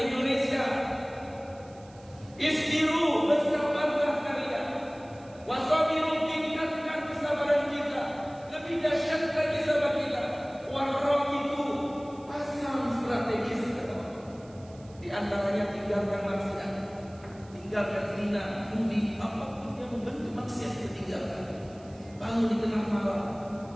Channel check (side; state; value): right; noise; hiss, 27 dB below the sound